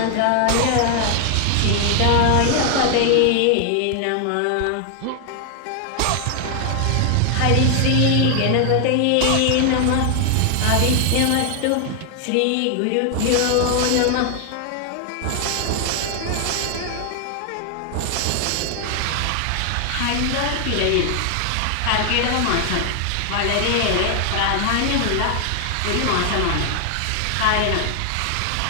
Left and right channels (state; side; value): different; both; correlation 0.00